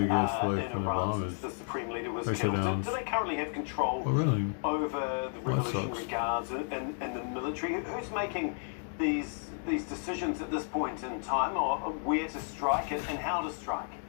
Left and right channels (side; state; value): right; silent; 56 dB below the other